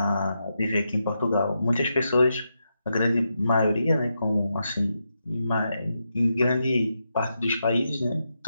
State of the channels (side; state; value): both; inverted; correlation -0.85